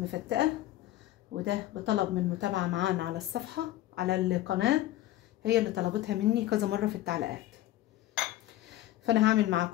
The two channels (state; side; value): quieter; right; 15.0 dB